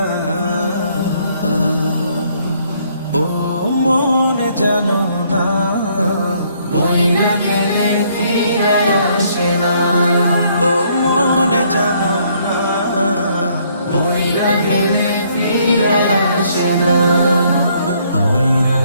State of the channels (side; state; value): both; inverted; correlation -0.67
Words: ও মন জানো না, মইরা গেলে ফিরে আসে না। ও মন জানো না, মইরা গেলে ফিরে আসে না।